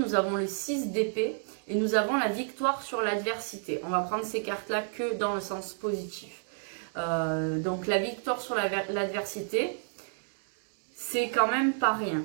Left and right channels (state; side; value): silent; left; digital silence